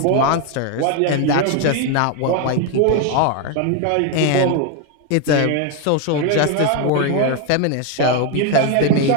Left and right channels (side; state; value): both; different; correlation 0.01